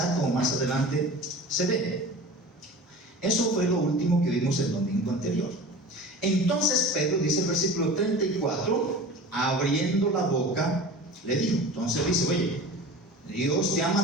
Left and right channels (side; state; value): both; normal; correlation 0.36